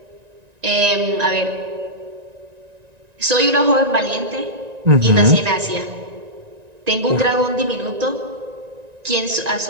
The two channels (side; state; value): left; late; 1.9 ms